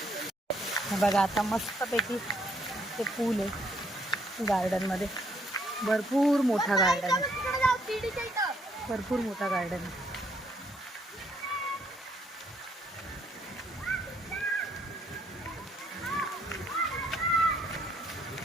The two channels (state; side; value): normal; both; correlation 0.69